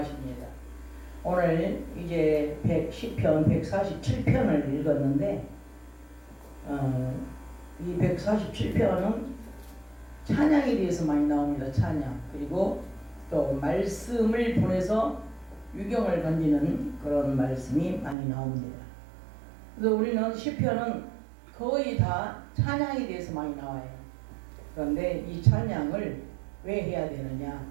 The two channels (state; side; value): drops out; left; at 18.2 s